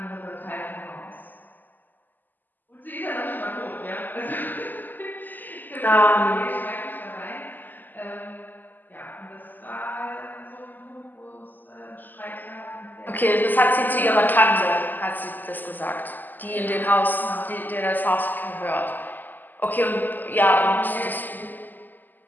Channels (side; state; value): right; late; 0.087 ms